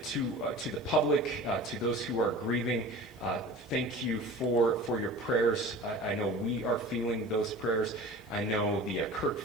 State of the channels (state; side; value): noise; left; hiss, 28 dB below the sound